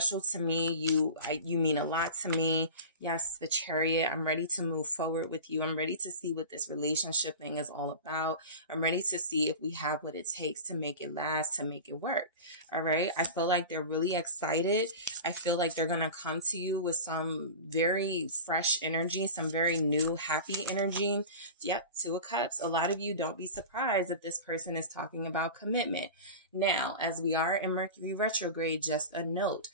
to me. You mean a lot to me. Yes, the Chariot. I'm ready to move forward with you. I'm ready to see what this relationship thing is all about. I'm ready to see if we have what it takes to make it last, to make it work. All right. I feel like they're really excited. I feel like they're going to come to you with some very fresh energy, some very new, happy energy. Yep. Two of Cups. A lot of you, don't be surprised if this person is talking about commitment. Now, as we are in Mercury retrograde, just a note.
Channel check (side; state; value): both; inverted; correlation -0.33